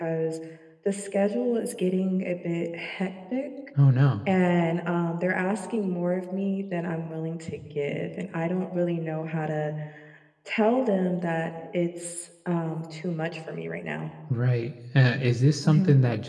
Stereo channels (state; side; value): identical; both; correlation 1.00